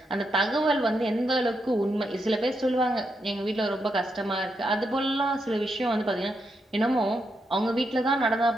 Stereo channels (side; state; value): both; normal; correlation 0.82